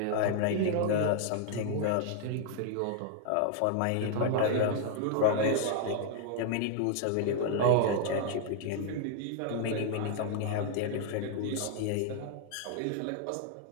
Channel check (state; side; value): different; both; correlation 0.00